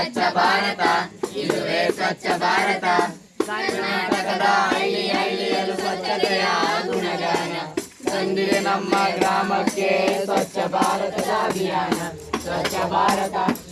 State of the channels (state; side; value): identical; both; correlation 1.00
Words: ಭಾರತ ಇದುವೇ ಸ್ವಚ್ಛ ಭಾರತ. ಕರ್ನಾಟಕದ ಹಳ್ಳಿ ಹಳ್ಳಿಯಲ್ಲೂ ಸ್ವಚ್ಛತೆಯ ಗುಣಗಾನ ತಂದಿದೆ ನಮ್ಮ ಗ್ರಾಮಕ್ಕೆ ಸ್ವಚ್ಛ ಭಾರತದ ಅಭಿಯಾನ. ಸ್ವಚ್ಛ ಭಾರತ